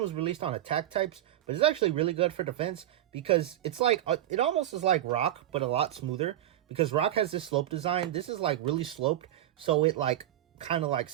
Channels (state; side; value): quieter; left; 12.9 dB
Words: released on attack types, but it's actually really good for defense because it's like it almost is like Rock, but a lot smoother. Because Rock has this slope design, this is like really sloped, so it like kind of like